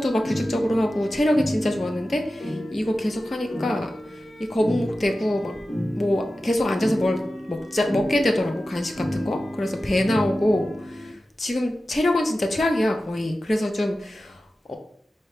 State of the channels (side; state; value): both; normal; correlation 0.94